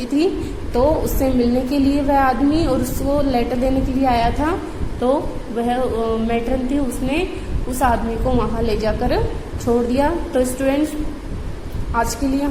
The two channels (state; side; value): identical; both; correlation 1.00